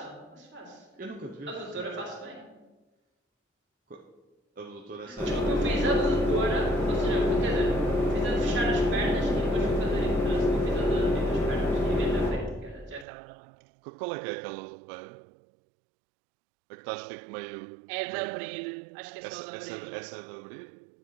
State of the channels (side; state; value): left; drops out; at 13.1 s